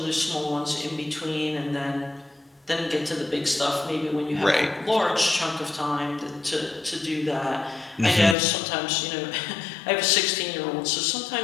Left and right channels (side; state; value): right; drops out; at 8.3 s